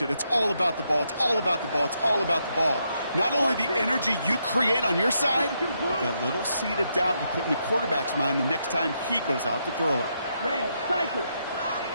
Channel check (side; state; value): both; inverted; correlation -0.79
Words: it. It's all about the ball. It's all about the ball. It's all about the ball. Not only the energy you create on your side, but that little seed of doubt you put in the quarterback's mind the next time he goes out to throw it. Red, cycle.